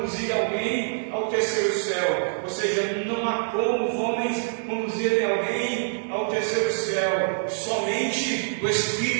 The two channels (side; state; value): left; silent; 62 dB below the other